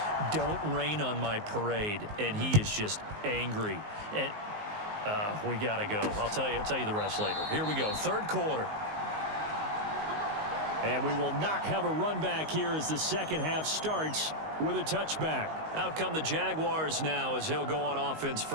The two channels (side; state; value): left; late; 19 ms